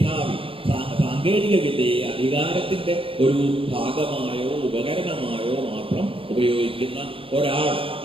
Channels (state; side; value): late; left; 0.26 ms